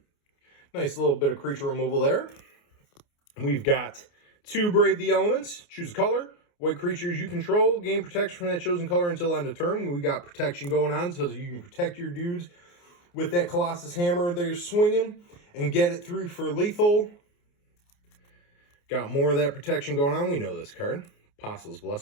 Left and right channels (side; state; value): right; late; 29 ms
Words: Nice little bit of creature removal there. We've got 2 Brave the Elements. Choose a color. White creatures you control gain protection from that chosen color until end of turn. We got protection going on so you can protect your dudes with that Colossus Hammer they're swinging and get it through for lethal. Got more of that protection going on. We know this card. Apostle's